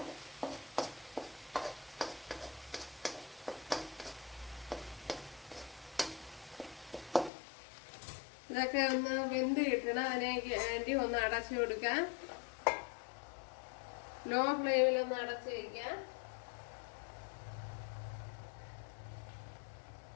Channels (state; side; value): drops out; right; at 7.3 s